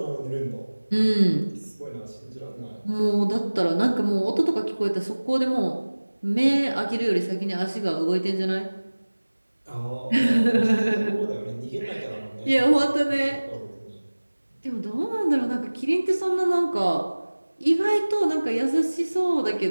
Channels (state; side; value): inverted; both; correlation -1.00